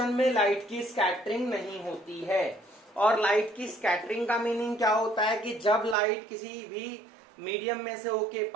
में लाइट की स्कैटरिंग नहीं होती है. और लाइट की स्कैटरिंग का मीनिंग क्या होता है कि जब लाइट किसी भी मीडियम में से होके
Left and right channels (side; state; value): left; drops out; at 6.0 s